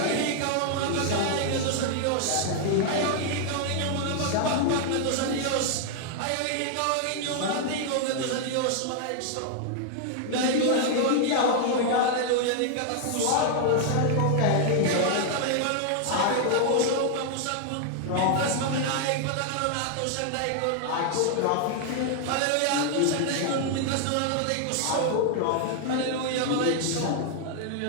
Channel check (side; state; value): both; different; correlation 0.00